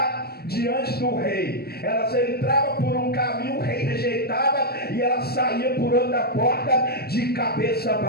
diante do rei. Elas entravam por um caminho, o rei rejeitava, e elas saíam por outra porta de cabeça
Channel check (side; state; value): right; late; 0.46 ms